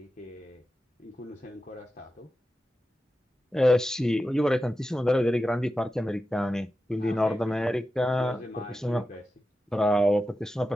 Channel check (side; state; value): both; normal; correlation 0.92